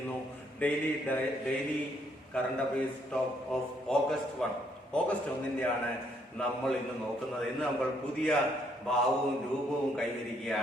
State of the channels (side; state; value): both; normal; correlation 0.70